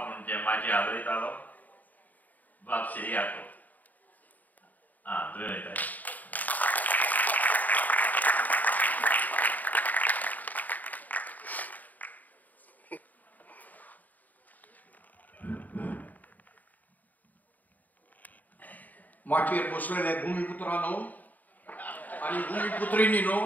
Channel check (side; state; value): right; late; 0.081 ms